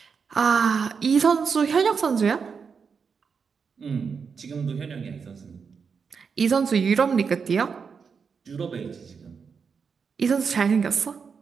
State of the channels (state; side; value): quieter; left; 5.9 dB